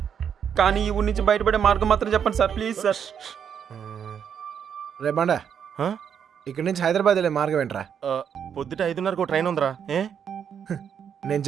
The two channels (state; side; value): quieter; left; 7.9 dB